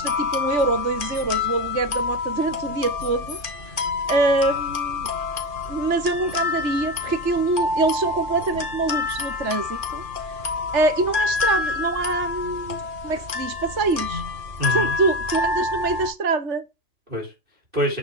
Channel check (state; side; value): late; left; 3.4 ms